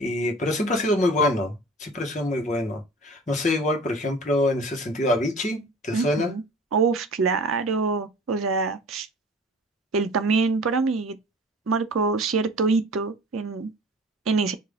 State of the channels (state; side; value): normal; both; correlation 0.43